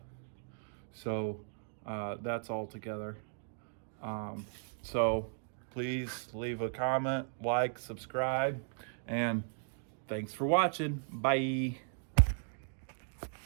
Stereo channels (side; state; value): left; silent; digital silence